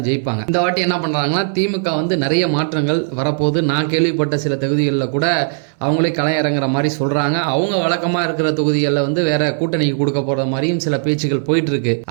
ஜெயிப்பாங்க. இந்த வாட்டி என்ன பண்றாங்கன்னா திமுக வந்து நிறைய மாற்றங்கள் வரப்போது. நான் கேள்விப்பட்ட சில தொகுதிகளில் கூட அவங்களே களை இறங்குற மாதிரி சொல்றாங்க. அவங்க வழக்கமா இருக்கிற தொகுதிகளில் வந்து வேற கூட்டணிக்கு கொடுக்க போற மாதிரியும் சில பேச்சுகள் போயிட்டு இருக்கு.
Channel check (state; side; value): silent; left; 68 dB below the other